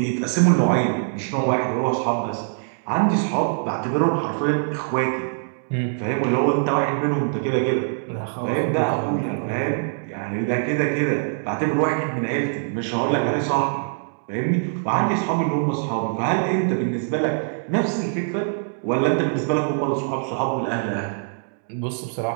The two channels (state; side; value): silent; left; digital silence